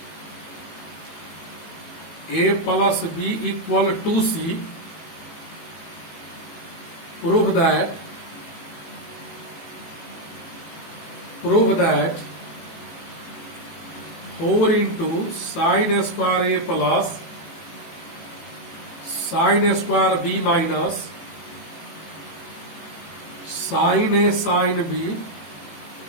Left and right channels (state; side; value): late; right; 18 ms